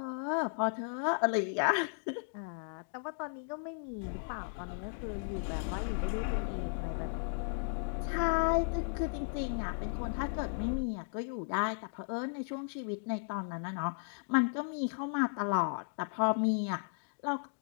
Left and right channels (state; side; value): silent; right; digital silence